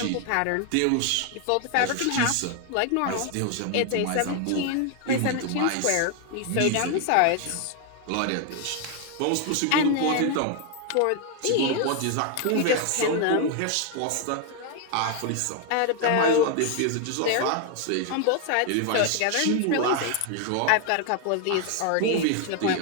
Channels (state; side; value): different; both; correlation 0.00